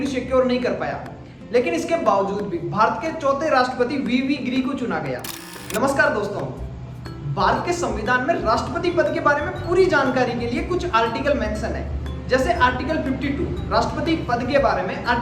सिक्योर नहीं कर पाया। लेकिन इसके बावजूद भी भारत के चौथे राष्ट्रपति वीवी गिरी को चुना गया। नमस्कार दोस्तों, भारत के संविधान में राष्ट्रपति पद के बारे में पूरी जानकारी के लिए कुछ आर्टिकल मेंशन है। जैसे आर्टिकल 52 राष्ट्रपति पद के बारे में,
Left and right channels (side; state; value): both; identical; correlation 1.00